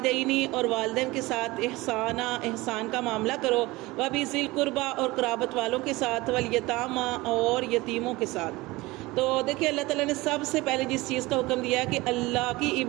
اور والدین کے ساتھ احسان کا معاملہ کرو وبذی القربی اور قرابت والوں کے ساتھ والیتامی اور یتیموں کے ساتھ۔ تو دیکھیے اللہ تعالیٰ نے سب سے پہلے جس چیز کا حکم دیا ہے کہ اللہ کی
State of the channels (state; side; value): quieter; left; 20.9 dB